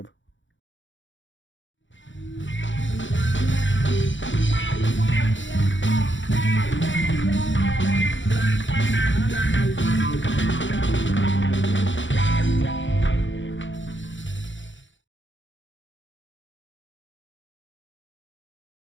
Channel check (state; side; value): late; right; 0.55 ms